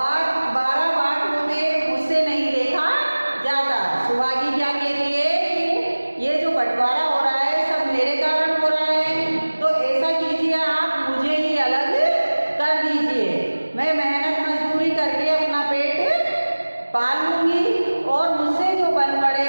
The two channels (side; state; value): both; inverted; correlation -1.00